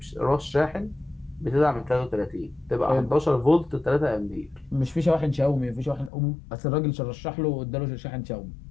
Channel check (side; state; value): right; drops out; at 6.1 s